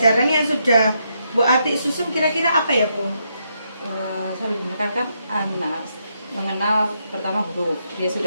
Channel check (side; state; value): both; inverted; correlation -0.79